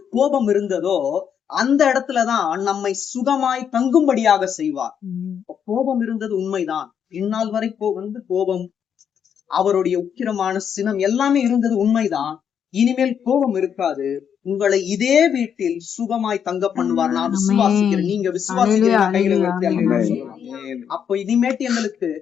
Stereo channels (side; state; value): right; quieter; 8.0 dB